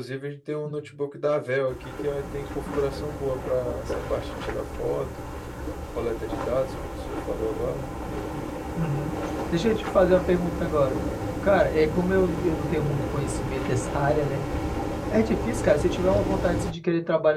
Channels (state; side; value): identical; both; correlation 1.00